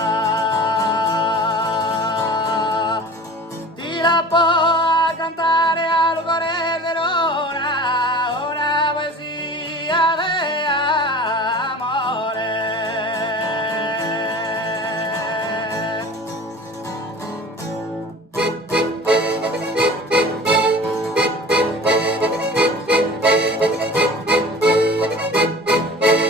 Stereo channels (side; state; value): both; normal; correlation 0.41